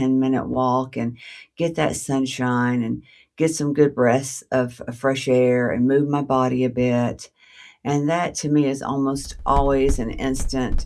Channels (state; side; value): identical; both; correlation 1.00